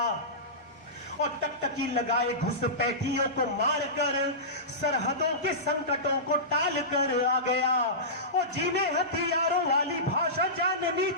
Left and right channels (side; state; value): both; normal; correlation -0.19